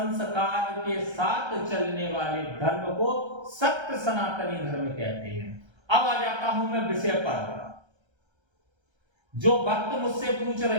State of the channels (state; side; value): late; left; 1.3 ms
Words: के साथ चलने वाले धर्म को सत्य सनातनी धर्म कहते हैं। अब आ जाता हूं मैं विषय पर। जो भक्त मुझसे पूछ